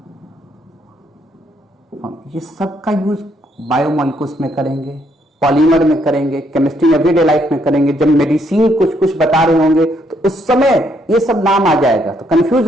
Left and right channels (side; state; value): both; normal; correlation 0.72